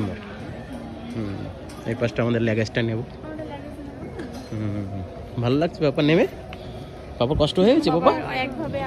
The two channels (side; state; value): both; identical; correlation 1.00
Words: এই পাশটা আমাদের ল্যাগেজটা নেব। ভালো লাগছে বাবা নেমে? বাবার কষ্ট হয়ে গেছে বাবা?